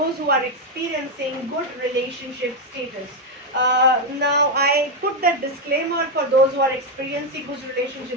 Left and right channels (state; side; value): normal; both; correlation 0.04